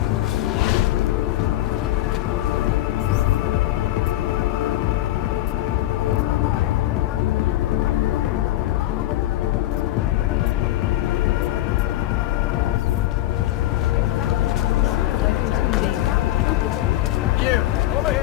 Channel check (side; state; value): right; quieter; 14.8 dB